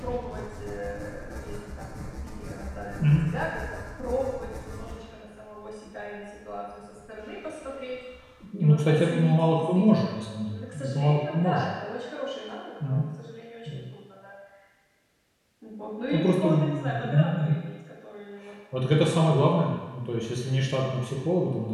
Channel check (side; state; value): both; identical; correlation 1.00